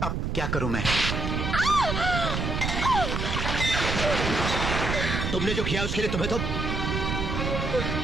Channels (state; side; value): noise; right; rumble, 1 dB below the sound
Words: अब क्या करूं मैं? तुमने जो किया उसके लिए तुम्हें तो